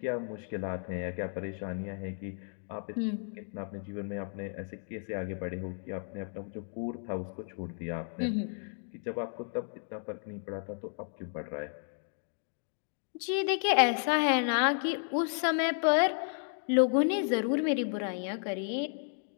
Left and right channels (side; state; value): right; silent; 56 dB below the other